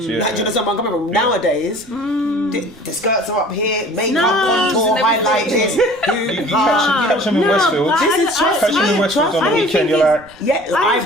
Kids, Like, do you know what I'm coming from? Nowadays, the skirts are up here, makeup on tour, highlight this. You catch them in Westfield. Catch them in Westfield on the weekend. You're like,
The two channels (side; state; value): right; noise; rumble, 26 dB below the sound